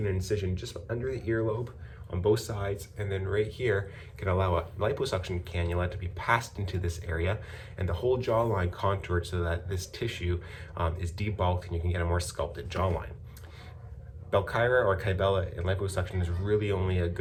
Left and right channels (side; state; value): both; identical; correlation 1.00